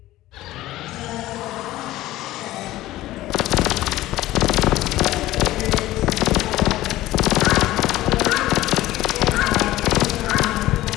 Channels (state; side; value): quieter; right; 16.1 dB